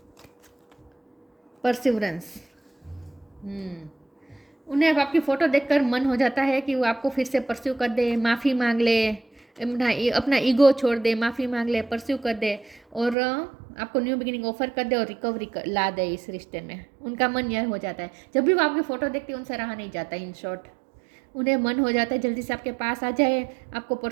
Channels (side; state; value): left; drops out; at 13.2 s